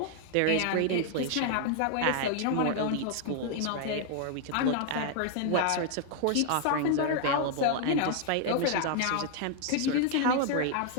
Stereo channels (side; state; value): both; different; correlation 0.00